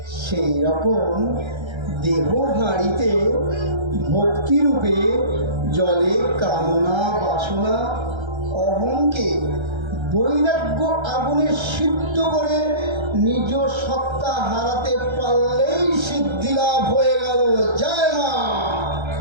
সেই রকম দেহ হাঁড়িতে ভক্তিরূপে জলে কামনা, বাসনা, অহংকে বৈরাগ্য আগুনে সিদ্ধ করে নিজ সত্তা হারাতে পারলেই সিদ্ধি লাভ হয়ে গেল। জয় মা।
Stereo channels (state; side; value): late; left; 1.3 ms